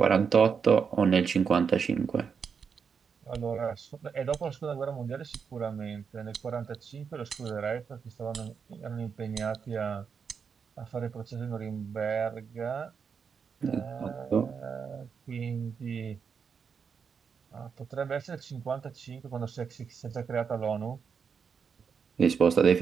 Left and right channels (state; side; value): quieter; left; 6.3 dB